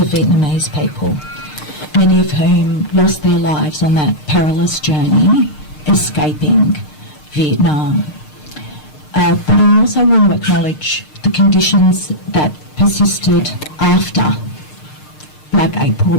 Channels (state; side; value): late; right; 6.6 ms